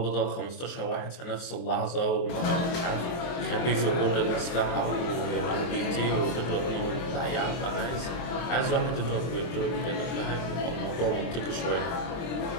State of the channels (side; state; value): right; late; 23 ms